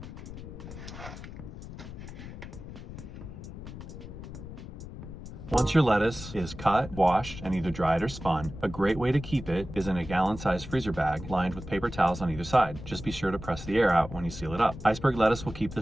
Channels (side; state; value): left; noise; rumble, 11 dB below the sound